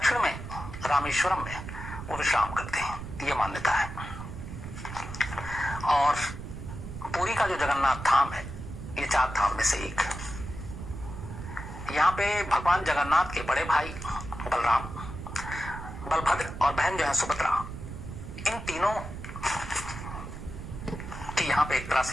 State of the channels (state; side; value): noise; right; rumble, 9 dB below the sound